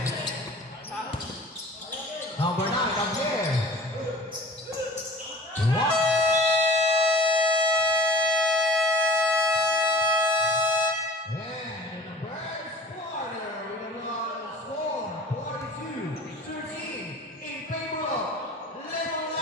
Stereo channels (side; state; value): both; normal; correlation 0.43